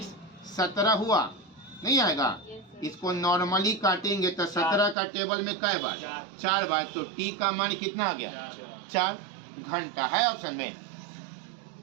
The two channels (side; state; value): left; drops out; at 5.0 s